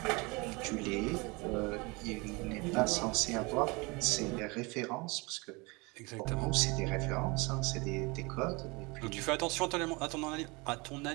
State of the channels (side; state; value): left; quieter; 26.5 dB